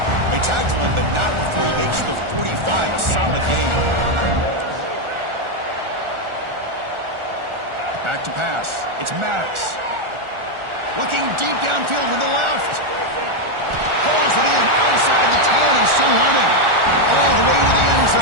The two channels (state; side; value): late; left; 1.4 ms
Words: They tackle him, but not before he makes the 45. A solid gain. Back to pass. It's Maddox. Looking deep downfield with the left. Pulls it in outside the 10 and still running. All the way to the end